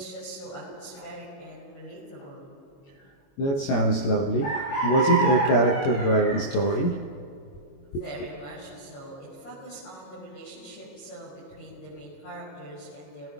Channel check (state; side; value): late; right; 22 ms